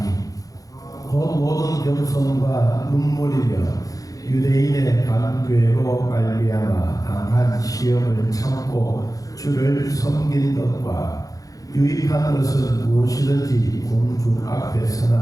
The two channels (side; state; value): right; late; 0.17 ms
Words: 곧 모든 겸손과 눈물이며 유대인의 간괴로 말미암아 당한 시험을 참고 주를 섬긴 것과 유익한 것은 무엇이든지 공중